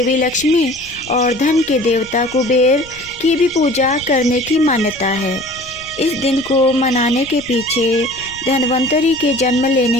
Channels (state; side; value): noise; left; rumble, 22 dB below the sound